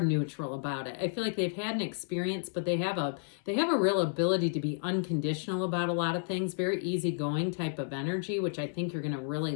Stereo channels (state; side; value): silent; right; 57 dB below the other